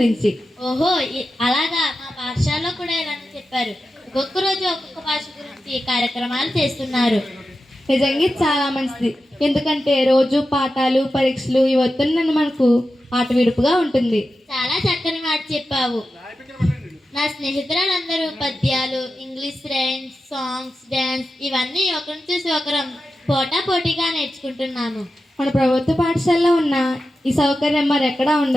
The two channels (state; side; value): normal; both; correlation 0.91